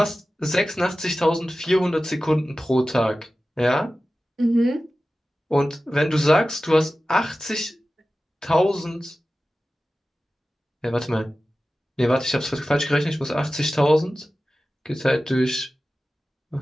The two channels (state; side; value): normal; both; correlation 0.95